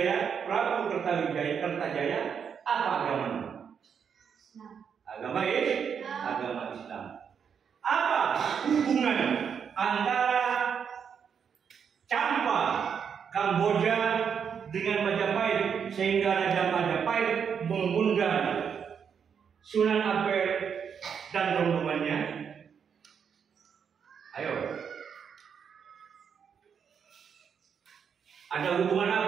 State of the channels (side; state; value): left; quieter; 7.1 dB